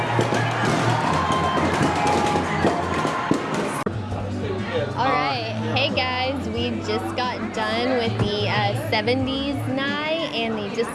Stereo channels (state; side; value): identical; both; correlation 1.00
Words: All right, hey guys, we just got done with the 70s night and the